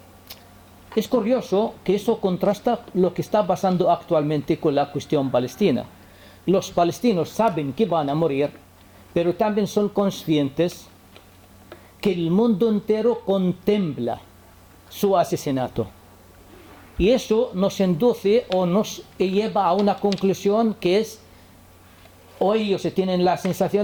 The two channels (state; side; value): identical; both; correlation 1.00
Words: Es curioso que eso contrasta lo que está pasando actualmente con la cuestión palestina. Los palestinos saben que van a morir, pero también son conscientes que el mundo entero contempla su asesinato. Y eso nos induce o nos lleva a una conclusión que es, o ellos tienen la